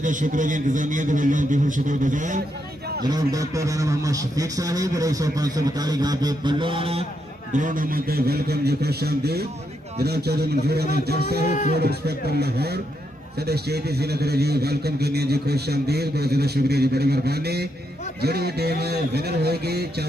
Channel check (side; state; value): both; normal; correlation 0.80